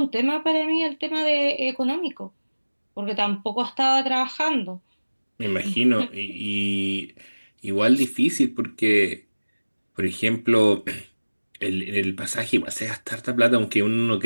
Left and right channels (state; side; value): inverted; both; correlation -1.00